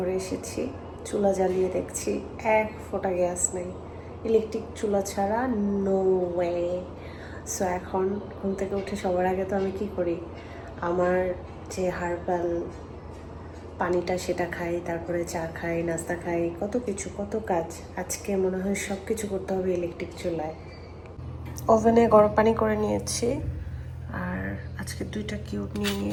এসেছি, চুলা জ্বালিয়ে দেখছি এক ফোঁটা গ্যাস নেই। ইলেকট্রিক চুলা ছাড়া নো ওয়ে। সো এখন ঘুম থেকে উঠে সবার আগে তো আমি কি করি, আমার যে হার্বাল পানিটা সেটা খাই, তারপরে চা খাই, নাস্তা খাই, কত কিছু কত কাজ। আজকে মনে হয় সব কিছু করতে হবে ইলেকট্রিক চুলায়। ওভেনে গরম পানি করে নিয়েছি, আর আজকে 2টা কিউব নিয়ে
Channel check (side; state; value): both; identical; correlation 1.00